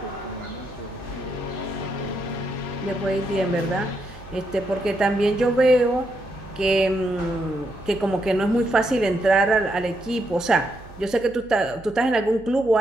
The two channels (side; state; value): right; noise; hum, 20 dB below the sound